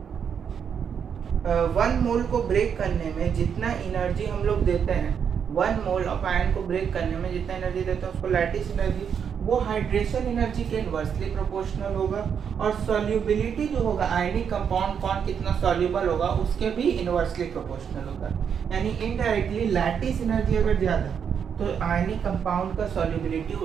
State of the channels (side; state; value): left; quieter; 7.4 dB